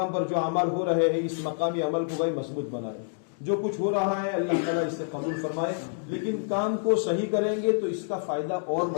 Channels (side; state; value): right; silent; digital silence